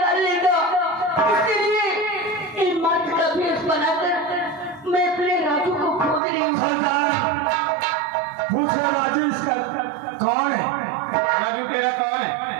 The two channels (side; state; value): left; drops out; at 6.2 s